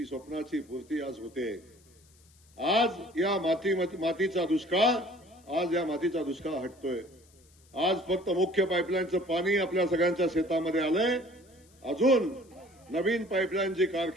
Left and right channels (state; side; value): noise; left; hiss, 30 dB below the sound